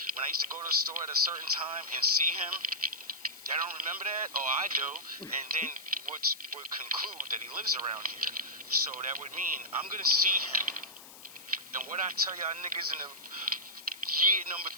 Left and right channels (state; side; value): noise; left; hiss, 17 dB below the sound